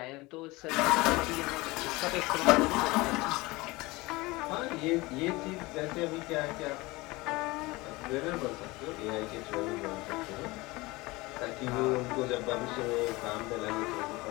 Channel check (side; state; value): right; quieter; 22.2 dB